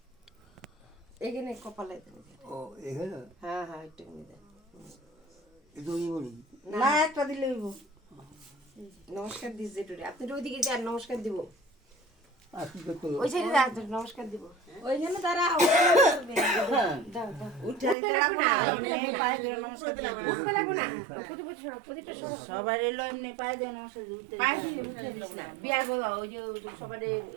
এখানে কপালে দেবে। ও এখানে হ্যাঁ হ্যাঁ একটু দেন। এটা ওই বলি না একটা দিলে হইব নমস্কার দিস যেটুরে আপনি ওইদিকে যান নমস্কার দিব আর কি করতে ওই সাইডে যান নমস্কার দিব ওইখানে তারা দাও দাও উঠে দিতে লাগবে না এমনি পায়ে দিয়ে নমস্কার দিতে লাগবে উঠতে লাগবে না প্রদীপটা সরো প্রদীপটা সরো সবাই এলো এমনি পায়ে দিয়ে নমস্কার দিতে পায়ে দিয়ে উঠে দিস না বিয়ার বলা ওই যে সবার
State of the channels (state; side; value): drops out; left; at 17.9 s